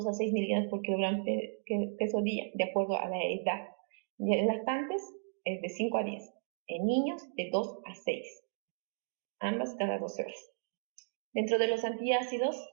a 6 miligramos por kilogramo peso día, de acuerdo a la edad. En lactantes es de 5 a 10, en niños de 2 a 6, ambas cada 12 horas. Dentro de los antiácidos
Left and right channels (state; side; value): silent; left; digital silence